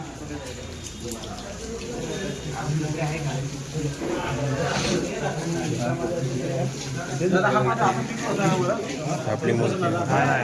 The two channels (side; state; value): both; identical; correlation 1.00